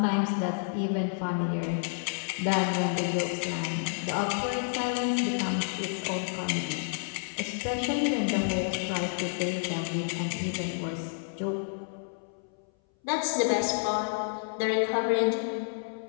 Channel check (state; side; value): silent; right; 58 dB below the other